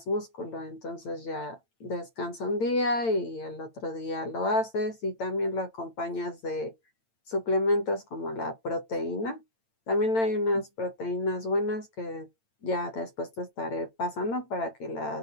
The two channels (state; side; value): late; right; 8.9 ms